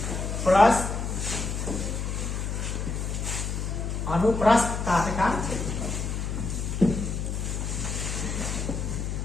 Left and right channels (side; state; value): left; noise; hum, 2 dB below the sound